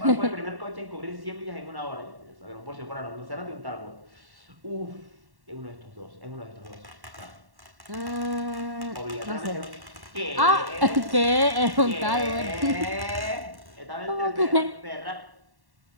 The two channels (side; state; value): left; late; 1.1 ms